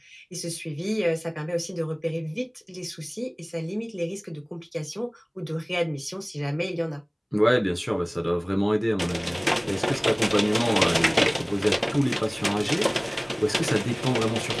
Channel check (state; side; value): identical; both; correlation 1.00